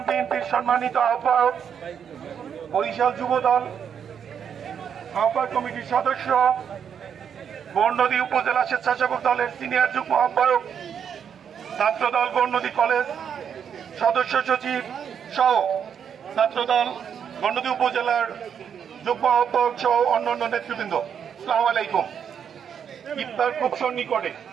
বিএনপির সম্মানিত আহ্বায়ক, বরিশাল যুব দল আহ্বায়ক কমিটির সদস্য, গৌরনদী উপজেলা স্বেচ্ছাসেবক দলের সিনিয়র যুগ্ম আহ্বায়ক, ছাত্রদল গৌরনদী কলেজ সদস্য সচিব সহ ছাত্রদল গৌরনদী উপজেলার যুগ্ম আহ্বায়ক সহ অন্যান্য নেতৃবৃন্দ, আসসালামু আলাইকুম। ইফতার খুব সন্নিকটে,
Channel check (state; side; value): quieter; left; 7.9 dB